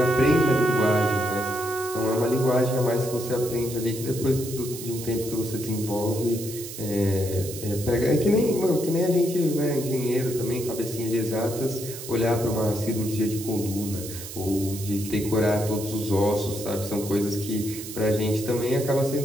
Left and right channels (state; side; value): noise; right; hiss, 11 dB below the sound